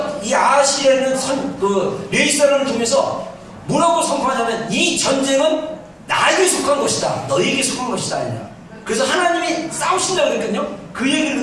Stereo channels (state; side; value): identical; both; correlation 1.00